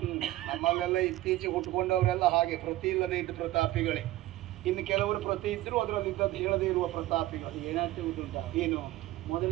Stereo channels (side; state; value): left; quieter; 16.0 dB